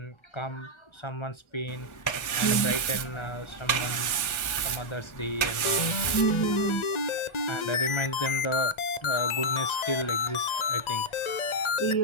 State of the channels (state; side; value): late; right; 1.4 ms